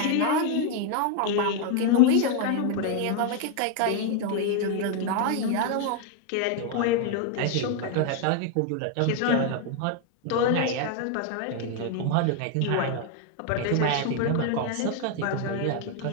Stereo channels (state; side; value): different; both; correlation 0.01